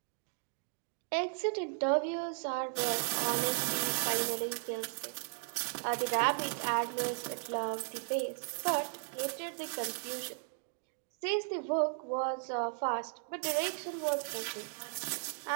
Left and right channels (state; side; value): silent; left; 54 dB below the other